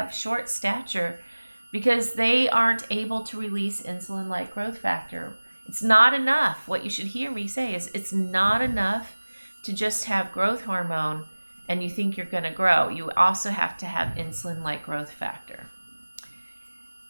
short stature because they aren't able to release insulin-like growth factor. It's not enough. What you should hear me say is it's not enough to just have growth hormone and you think you're going to grow. You also have to have insulin-like growth factor.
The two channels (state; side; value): inverted; both; correlation -1.00